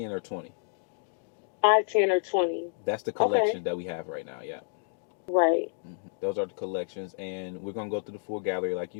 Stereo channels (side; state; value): right; silent; digital silence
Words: or 20. 5, 10, or 20. That's the Okay. collection that we have right now. Yeah. Right. Those are the collections, and we're gonna go through the full gallery, like